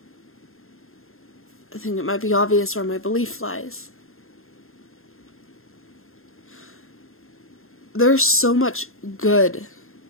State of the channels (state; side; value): late; right; 0.61 ms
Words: I think it might be obvious where my belief lies. There's so much good